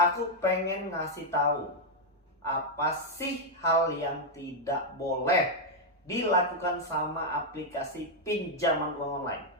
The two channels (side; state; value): both; normal; correlation 0.00